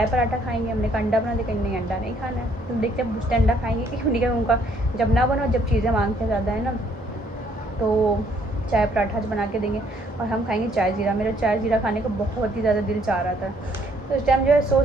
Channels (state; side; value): normal; both; correlation 0.66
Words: पराठा खाएंगे, हमने का अंडा बना दे, कहीं नहीं अंडा नहीं खाना है। तो देखते हैं पूछते अंडा खाएंगे कि उन्हीं का, उनका जब ना बनो, जब चीज़ें मांगते ज़्यादा है ना, तो चाय पराठा बना के देंगे और हम खाएंगे चाय ज़ीरा। मेरा चाय ज़ीरा खाने का बहुत ही ज़्यादा दिल चाह रहा था। तो इस टाइम जो है